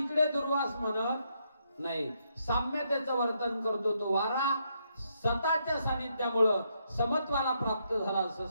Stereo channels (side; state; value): both; inverted; correlation -0.77